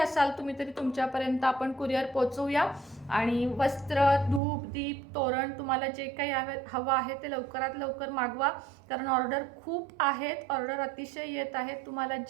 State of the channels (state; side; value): drops out; left; at 4.4 s